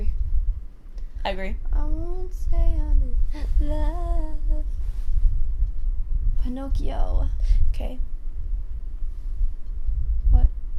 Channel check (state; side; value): identical; both; correlation 1.00